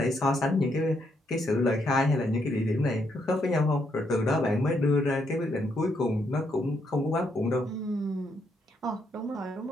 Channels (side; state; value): both; normal; correlation 0.76